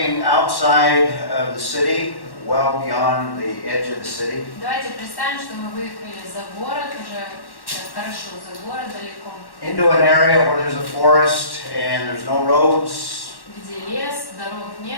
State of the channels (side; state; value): right; late; 1.1 ms